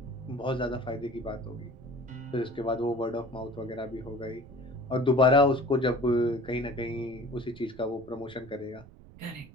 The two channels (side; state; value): right; noise; rumble, 20 dB below the sound